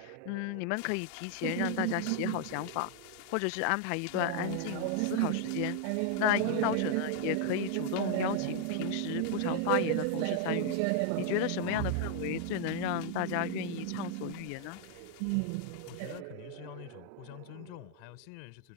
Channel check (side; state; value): both; different; correlation 0.00